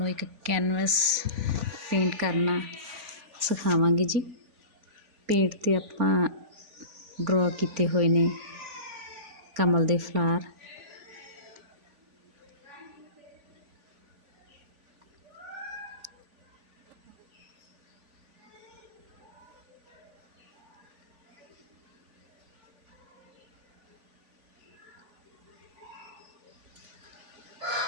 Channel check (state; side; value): late; left; 3.5 ms